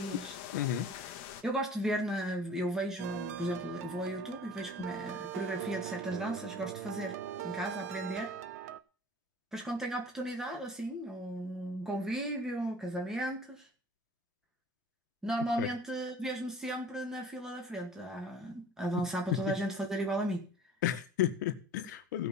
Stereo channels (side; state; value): both; normal; correlation 0.44